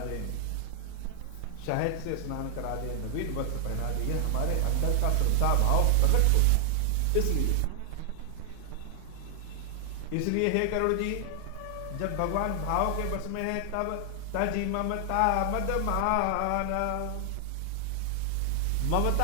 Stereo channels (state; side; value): different; both; correlation -0.01